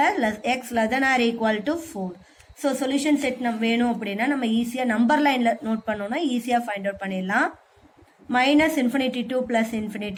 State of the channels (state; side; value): identical; both; correlation 1.00